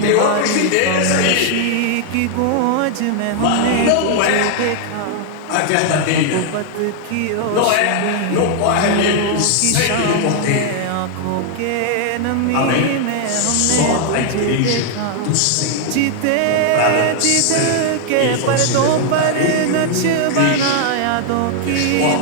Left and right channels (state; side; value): different; both; correlation 0.00